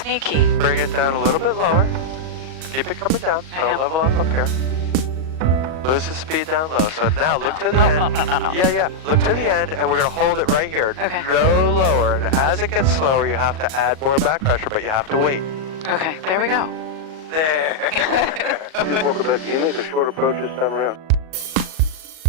Bring it down a little bit lower. Keep it coming down. I Don't am. level off up here. Lose the speed down low. So now look to the end. No. Yeah. Look to the end, and we're going to hold it right here. Okay. No lower. And as it gets slower, you have to add more back pressure, but you have to wait. Okay, there we go. There. 24 Quebec, can you make a short approach this time around?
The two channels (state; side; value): late; left; 38 ms